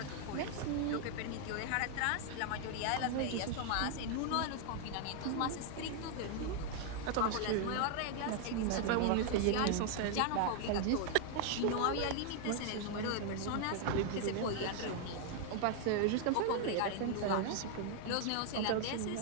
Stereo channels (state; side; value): different; both; correlation 0.00